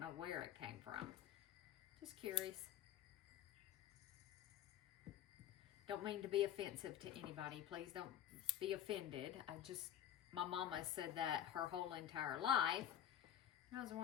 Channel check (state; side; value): quieter; right; 10.8 dB